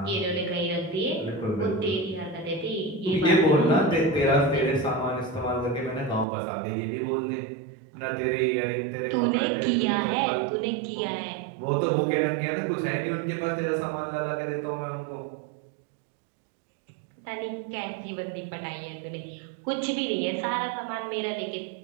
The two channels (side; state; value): left; drops out; at 6.2 s